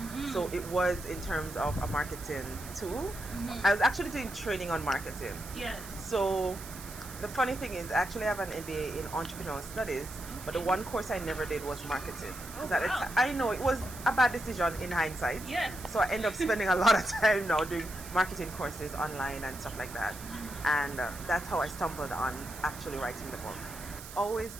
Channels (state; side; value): noise; right; hiss, 14 dB below the sound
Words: So it was in terms of a marketing tool. I was actually doing training on marketing. Yes. So the funny thing is, I actually have an MBA in entrepreneurial studies, but the one course I never did was marketing. I know it was a bad decision in hindsight. Yes. So I end up spending a lot of time now doing marketing courses online and stuff like that. And that's how I stumbled on actually writing the book. Always